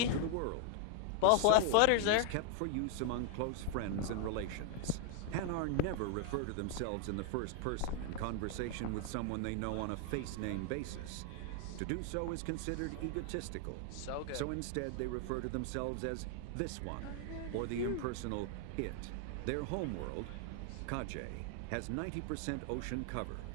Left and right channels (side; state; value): both; different; correlation 0.00